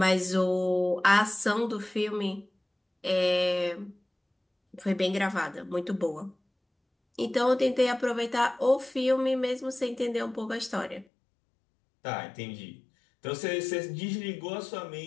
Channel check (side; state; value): right; drops out; at 11.1 s